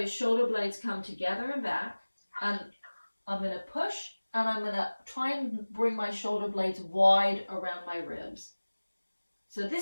shoulder blades come together and back, and I'm going to push, and I'm going to try and bring my shoulder blades wide around my ribs. So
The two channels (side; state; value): both; inverted; correlation -1.00